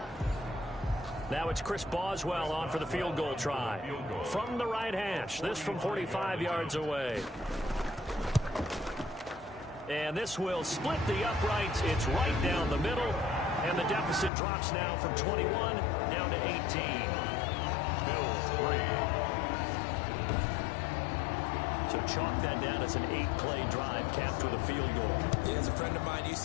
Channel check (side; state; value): right; drops out; at 14.3 s